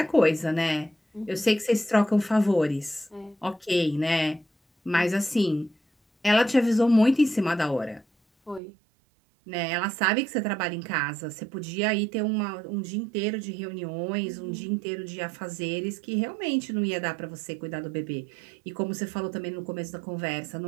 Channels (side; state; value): left; drops out; at 8.6 s